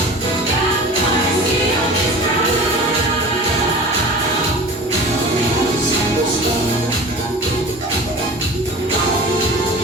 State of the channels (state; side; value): normal; both; correlation 0.38